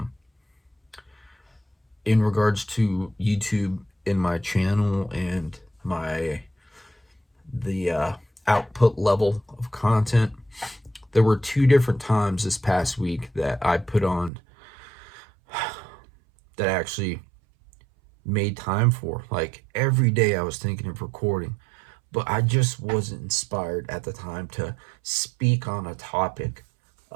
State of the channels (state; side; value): drops out; left; at 14.3 s